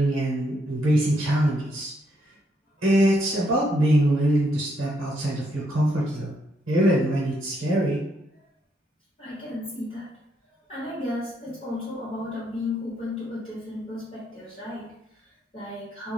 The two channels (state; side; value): normal; both; correlation 0.75